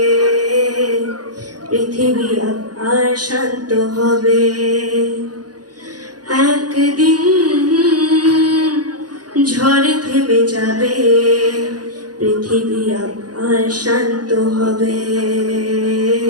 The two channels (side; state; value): left; late; 0.69 ms